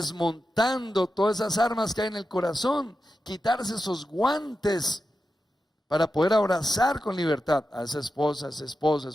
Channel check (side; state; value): both; normal; correlation 0.90